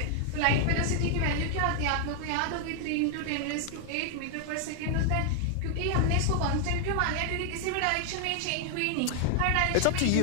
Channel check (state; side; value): different; both; correlation 0.00